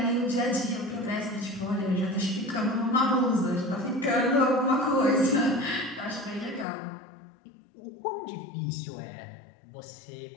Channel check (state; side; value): drops out; right; at 6.7 s